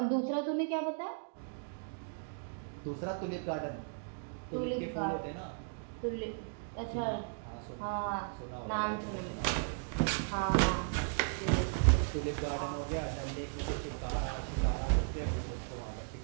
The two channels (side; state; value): left; silent; digital silence